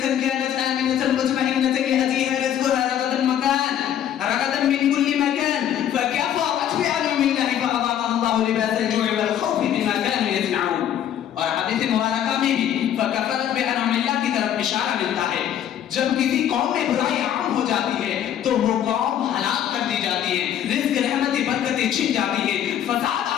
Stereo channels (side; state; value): right; quieter; 10.3 dB